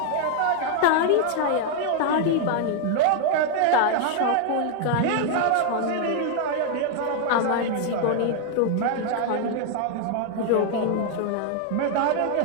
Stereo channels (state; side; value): different; both; correlation 0.00